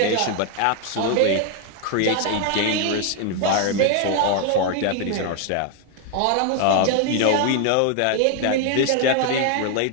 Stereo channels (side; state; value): both; different; correlation 0.01